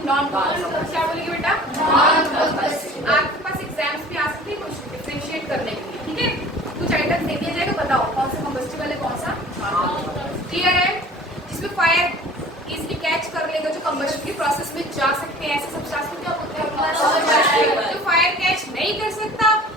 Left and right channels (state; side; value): normal; both; correlation 0.45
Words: Non combustible. क्या बोलेंगे बेटा? Non combustible. आपके पास एग्जाम्स में आ सकती है कुछ डिफरेंशिएट करने के लिए, ठीक है? कुछ आइटम्स दे दिया जाएगा, बताओ कौन सा कंबस्टिबल है कौन सा क्लियर है? जिसमें फायर इजीली कैच कर लेगा, जो कंबशन की प्रोसेस में जा सकते हैं, ऐसे सब्सटेंस को क्या बोलते हैं? जो फायर कैच नहीं कर सकता